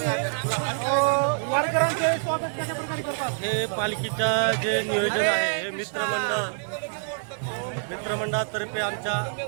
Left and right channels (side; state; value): left; silent; 60 dB below the other